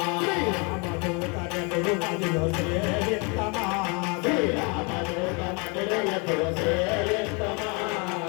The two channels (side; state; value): right; quieter; 32.1 dB